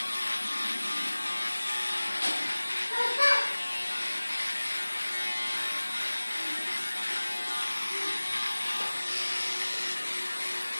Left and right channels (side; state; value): both; inverted; correlation -1.00